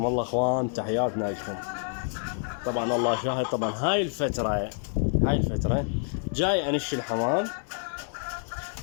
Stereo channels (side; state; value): right; silent; 60 dB below the other